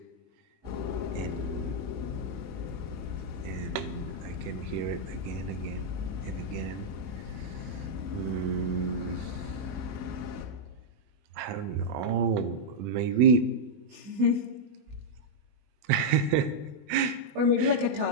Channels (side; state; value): left; late; 21 ms